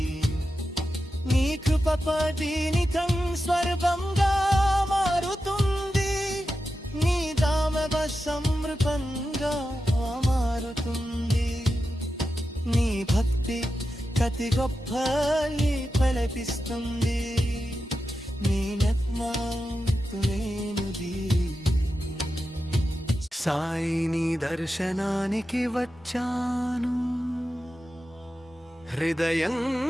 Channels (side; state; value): both; normal; correlation 0.91